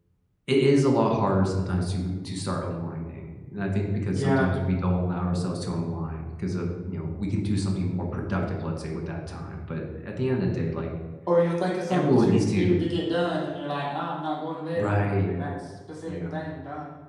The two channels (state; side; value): identical; both; correlation 1.00